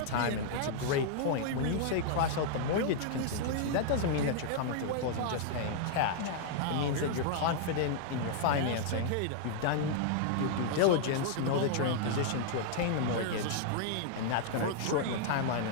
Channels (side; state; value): both; different; correlation -0.01